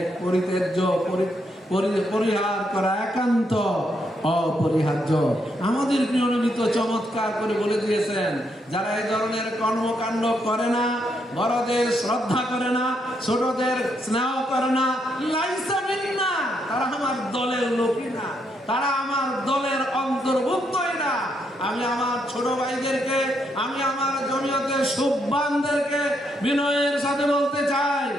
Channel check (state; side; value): normal; both; correlation 0.77